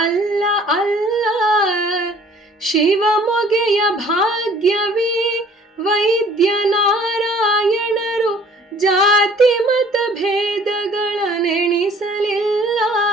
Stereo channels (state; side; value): normal; both; correlation 0.54